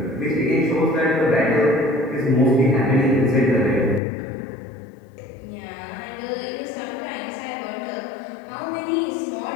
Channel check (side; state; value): right; drops out; at 4.0 s